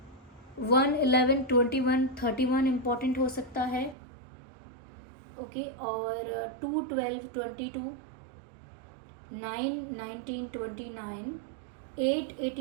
1, 11, 21, 31 इम्पॉर्टेंट हो सकता है। ओके, और 2, 12, 22, 9, 19, 29, 8,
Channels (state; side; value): drops out; left; at 4.0 s